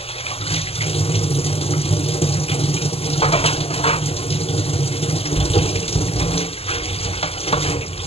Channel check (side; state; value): right; late; 0.29 ms